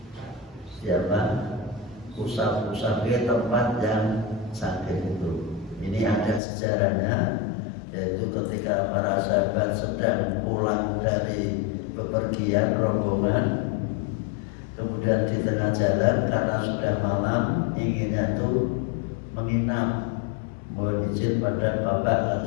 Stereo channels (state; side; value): drops out; right; at 6.4 s